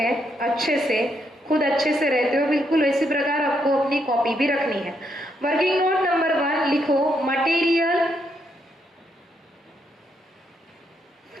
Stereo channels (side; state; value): both; normal; correlation 0.77